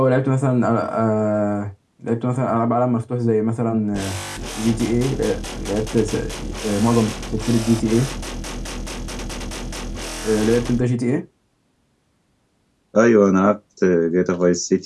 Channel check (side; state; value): both; identical; correlation 1.00